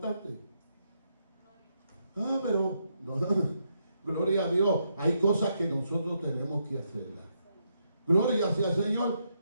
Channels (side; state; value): both; inverted; correlation -0.79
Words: Pero no, gloria a Dios. Hay cosas que nosotros tenemos que hacerlas. Gloria sea al Señor.